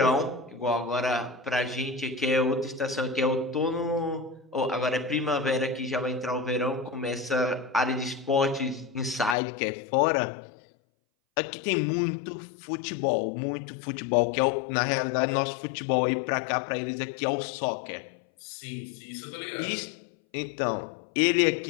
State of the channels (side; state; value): right; drops out; at 9.3 s